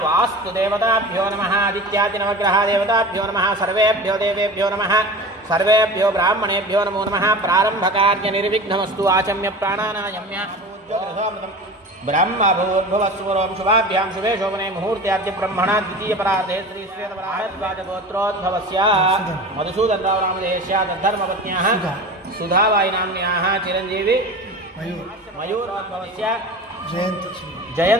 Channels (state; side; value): normal; both; correlation 0.34